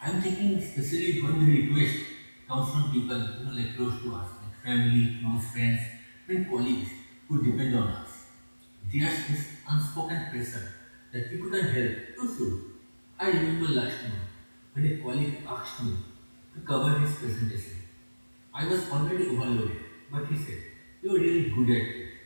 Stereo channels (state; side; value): inverted; both; correlation -1.00